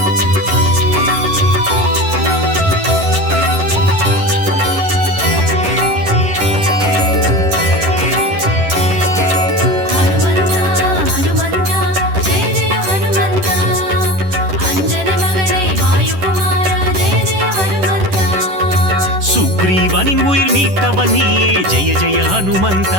சுக்ரீவனின் உயிர் மீட்டவன் நீயே ஜெய ஜெய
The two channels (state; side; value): late; left; 11 ms